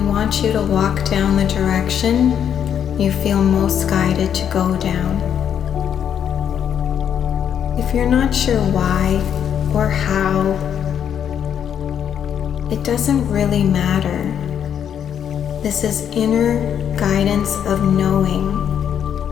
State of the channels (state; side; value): quieter; right; 8.8 dB